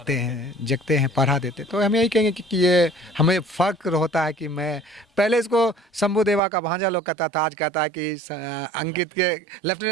हैं, पढ़ा देते। तो हम यही कहेंगे कि ये हमें फ़ख्र होता है कि मैं पहले इसको शंभू देवा का भांजा लोग कहता था, आज कहता है कि अंकित के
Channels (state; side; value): drops out; left; at 6.4 s